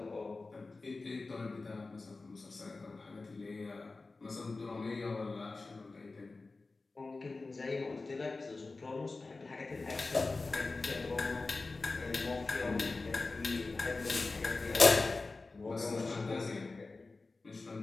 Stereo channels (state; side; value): quieter; right; 3.6 dB